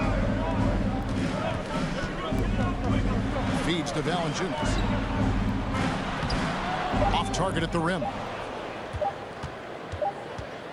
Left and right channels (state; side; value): identical; both; correlation 1.00